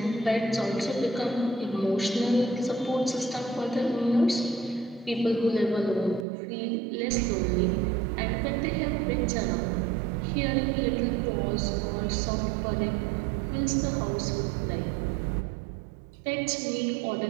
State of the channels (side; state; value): left; drops out; at 6.2 s